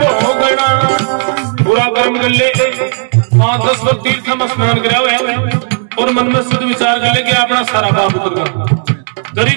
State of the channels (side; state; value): left; silent; 57 dB below the other